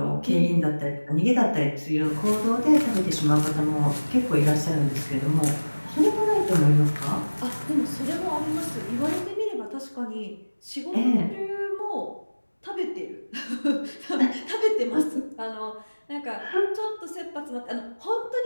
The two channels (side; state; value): both; inverted; correlation -1.00